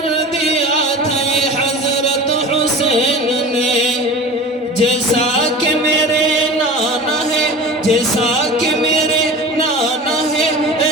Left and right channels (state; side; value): normal; both; correlation 0.35